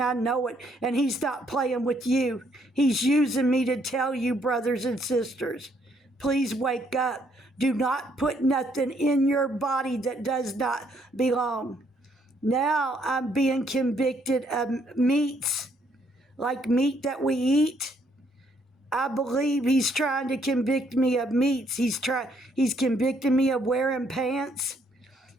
I know it. And He's not playing with you. He's using me to tell you, brothers and sisters, please wake up. Do not put nothing in your body that does not belong. Now I'm being convicted of meats, like meat that we eat. I believe He's trying to convict me of meats. He's convicting me of wearing pants.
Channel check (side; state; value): both; normal; correlation 0.69